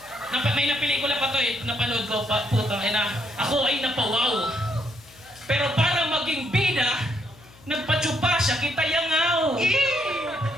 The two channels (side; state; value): left; noise; hum, 25 dB below the sound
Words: May pelikula pa to napanood ko, putang ina. Ako ay napawaw. Pero para maging bida, nagpatsupa siya, kita yangaw.